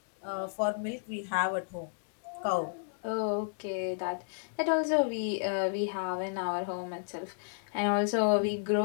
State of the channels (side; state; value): right; silent; digital silence